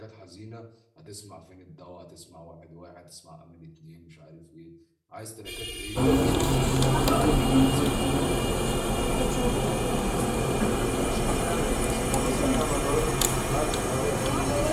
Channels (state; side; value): identical; both; correlation 1.00